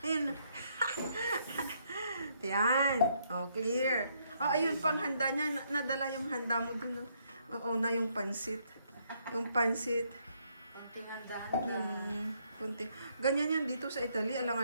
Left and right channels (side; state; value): both; inverted; correlation -0.72